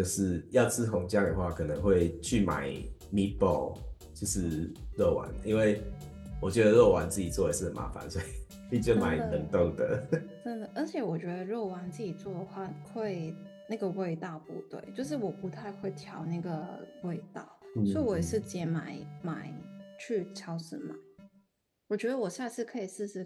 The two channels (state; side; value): identical; both; correlation 1.00